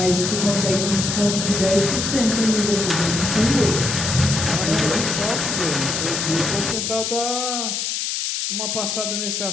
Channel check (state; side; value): noise; left; hiss, 2 dB below the sound